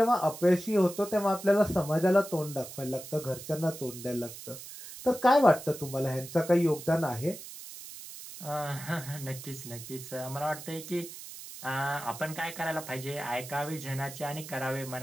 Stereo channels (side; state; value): right; noise; hiss, 13 dB below the sound